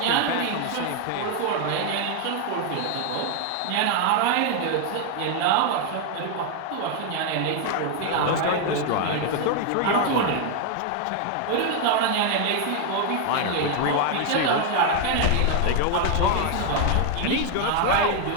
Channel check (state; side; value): different; both; correlation 0.01